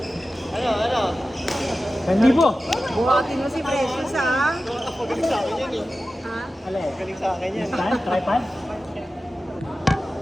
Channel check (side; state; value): both; normal; correlation 0.94